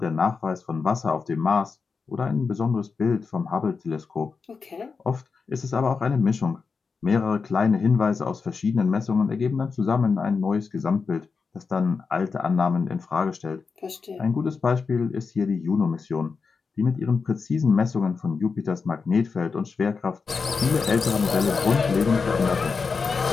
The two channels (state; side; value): quieter; right; 5.0 dB